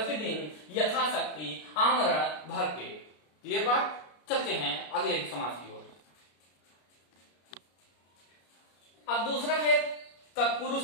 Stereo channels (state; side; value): late; right; 33 ms